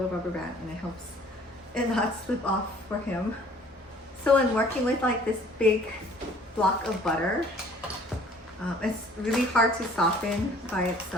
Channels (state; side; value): normal; both; correlation 0.54